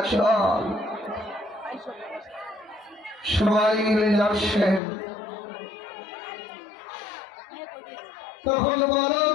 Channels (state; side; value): drops out; right; at 4.8 s